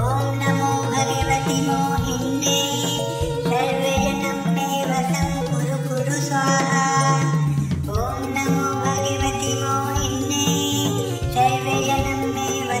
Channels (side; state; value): both; identical; correlation 1.00